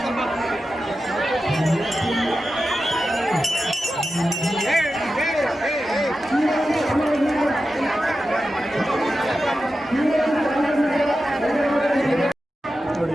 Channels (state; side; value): normal; both; correlation 0.92